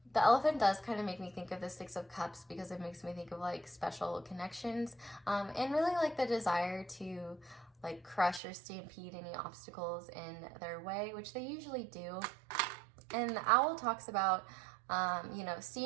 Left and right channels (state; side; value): drops out; left; at 8.4 s